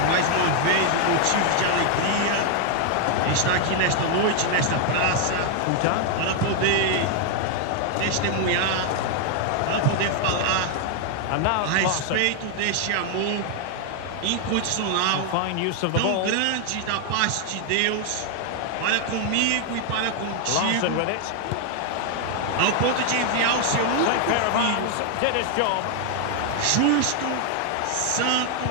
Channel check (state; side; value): different; both; correlation 0.00